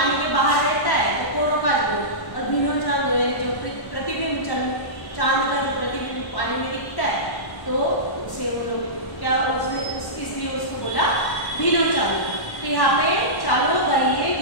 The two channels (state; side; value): late; right; 1.1 ms